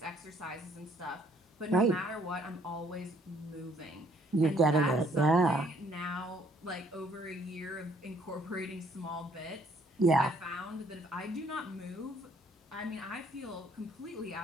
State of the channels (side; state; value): both; normal; correlation 0.64